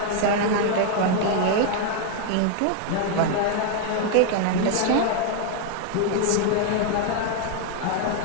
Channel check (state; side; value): different; both; correlation 0.00